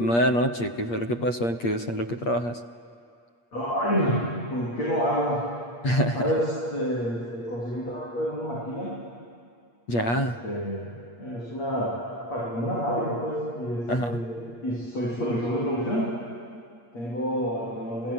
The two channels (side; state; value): right; late; 8.5 ms